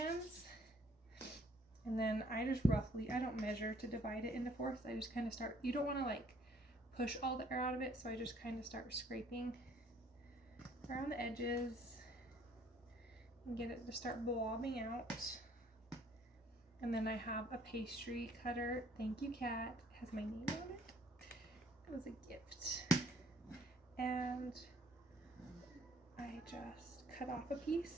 and then I just roughly, I don't measure to divide it into fourths. I just kind of start, you don't want to like push all the air out of it, so I just kind of start scraping around the edges and get it to start blobbing out. And then I have a pastry cutter. Thank you, Kat. It has my name on it. It was a gift. And I just cut off a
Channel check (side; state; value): both; normal; correlation 0.61